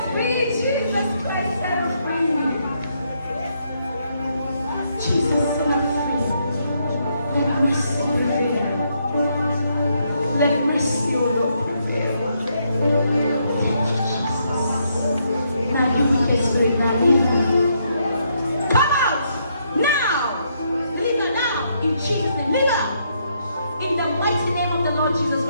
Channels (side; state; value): both; inverted; correlation -0.75